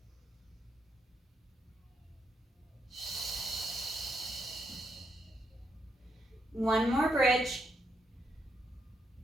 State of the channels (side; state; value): both; normal; correlation 0.79